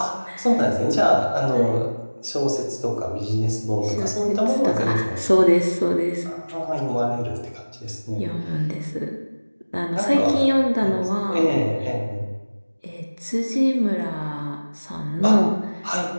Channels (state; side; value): inverted; both; correlation -1.00